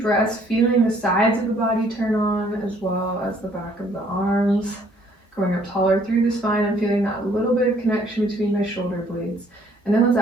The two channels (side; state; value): both; normal; correlation 0.62